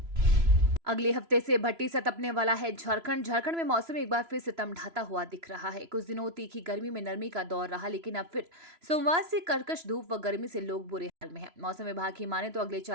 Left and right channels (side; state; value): left; late; 3.0 ms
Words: अगले हफ्ते से भट्टी सा तपने वाला है झारखंड में मौसम एक बार फिर सितम ढाता हुआ दिख रहा है। कुछ दिनों तीखी गर्मी में नरमी का दौर रहा, लेकिन अब फिर सोमवार से कर्कश धूप व गर्मी से लोग बुरे हाल में हैं। मौसम विभाग की माने तो अगले